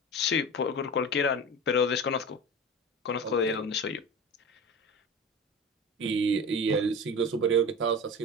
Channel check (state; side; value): normal; both; correlation 0.31